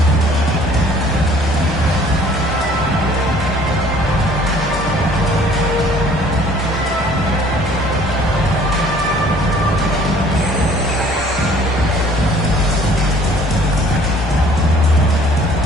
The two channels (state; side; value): normal; both; correlation 0.55